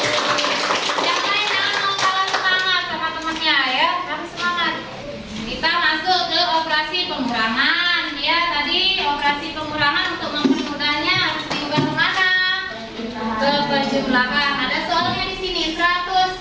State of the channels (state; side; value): identical; both; correlation 1.00